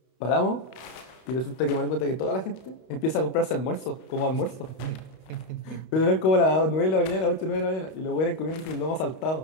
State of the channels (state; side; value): late; right; 32 ms